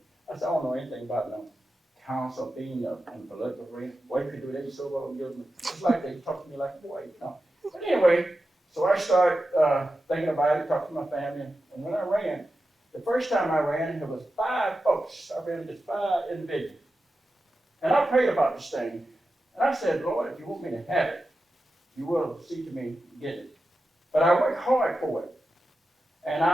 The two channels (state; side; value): normal; both; correlation 0.91